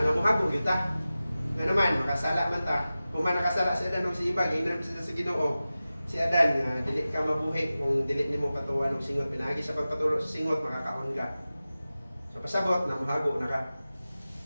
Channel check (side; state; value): both; inverted; correlation -0.95